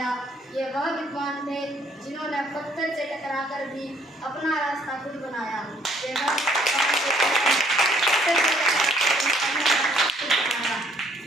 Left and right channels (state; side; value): normal; both; correlation 0.64